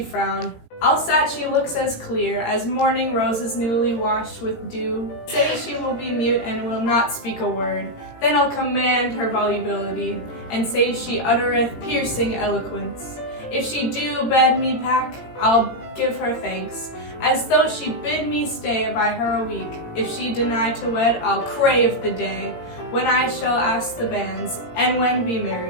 frown. Alsat she looks as clear as morning roses newly washed with dew. Say she will be mute and will not speak a word. Then I'll command her volubility, and say she uttereth piercing eloquence. If she do bid me pack, I'll give her thanks, as though she bid me stay by her a week. If she deny to wed, I'll crave the day when I shall ask the banns, and when be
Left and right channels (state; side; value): late; right; 17 ms